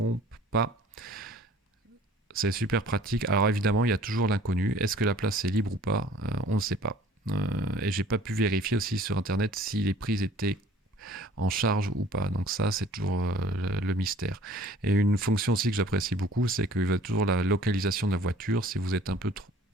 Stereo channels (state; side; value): normal; both; correlation 0.52